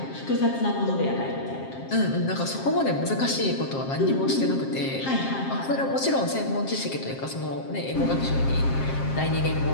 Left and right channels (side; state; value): right; late; 7.5 ms